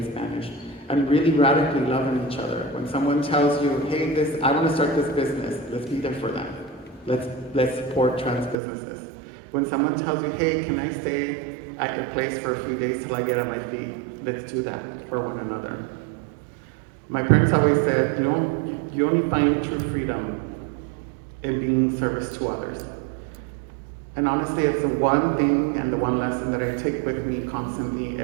Spanish, and really radically loving each other. When someone tells you, hey, I want to start this business, let's be there for them. Let's support trans businesses. When someone tells you, hey, can I stay at your place for a few days till I get on my feet, let's do that for one another. My parents always said, you only find true freedom in being service to others. And honestly, it's the one thing and the one lesson that I take with me constantly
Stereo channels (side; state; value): left; drops out; at 8.6 s